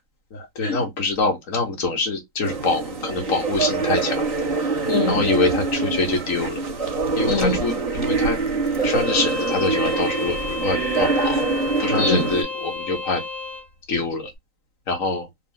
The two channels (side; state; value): right; late; 3.9 ms